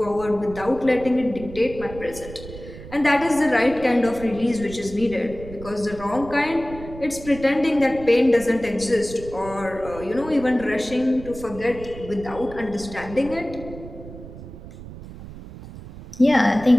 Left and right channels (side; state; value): right; noise; rumble, 14 dB below the sound